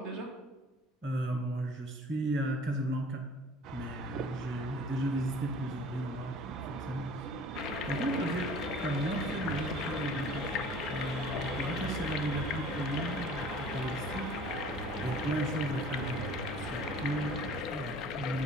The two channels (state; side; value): normal; both; correlation 0.48